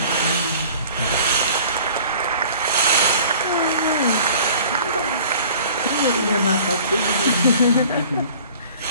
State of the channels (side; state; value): both; inverted; correlation -0.48